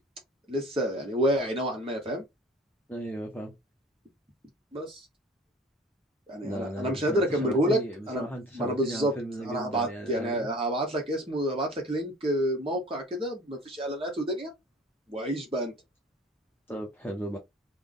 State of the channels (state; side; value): normal; both; correlation 0.45